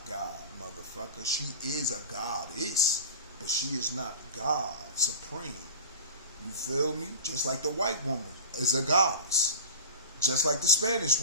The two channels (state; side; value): inverted; both; correlation -0.33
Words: God, motherfucker. She is a goddess, but she is not God supreme. You feel me? Just like the white woman is a goddess. Just like the Spanish